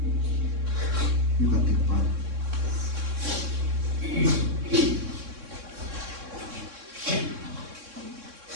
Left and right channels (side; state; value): left; late; 3.6 ms